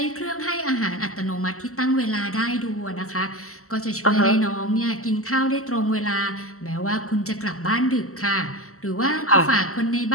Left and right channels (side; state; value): right; late; 0.63 ms